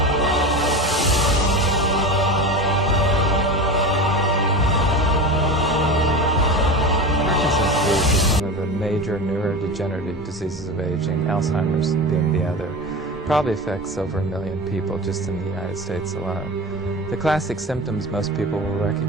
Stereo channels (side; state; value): both; normal; correlation 0.27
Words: Major neurodegenerative diseases of aging, Alzheimer's being the other, probably affects over 1 million people just in the United States alone. The classic symptoms most people will